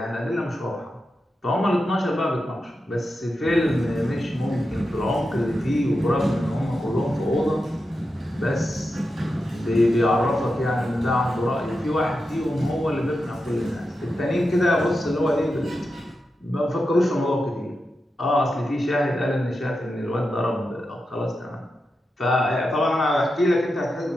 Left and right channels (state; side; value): normal; both; correlation 0.89